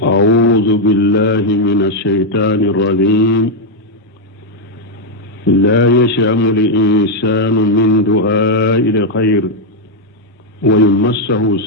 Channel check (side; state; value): both; normal; correlation 0.00